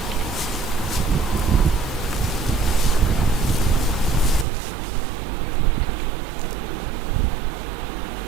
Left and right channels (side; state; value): left; drops out; at 4.5 s